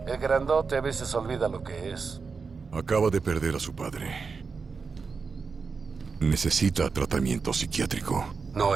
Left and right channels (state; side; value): quieter; left; 5.0 dB